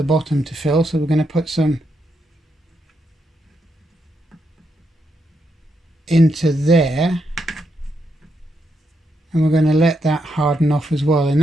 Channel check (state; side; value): normal; both; correlation 0.81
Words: bottom to fill, so we're going to put some into there, and we're going to let that harden off as well, and